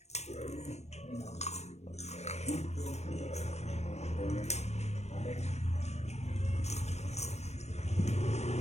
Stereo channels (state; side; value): late; right; 0.32 ms